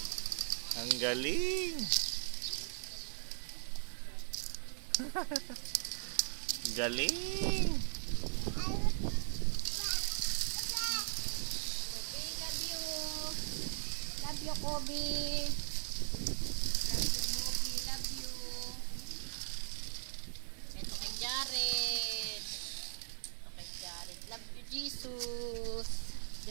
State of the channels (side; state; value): left; silent; 52 dB below the other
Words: Ang galing. Galing. Love you. Love you, Kobe. Love you, Kobe. Love you. Ito kay Jared. Ito kay Jared. Love you, Jesus.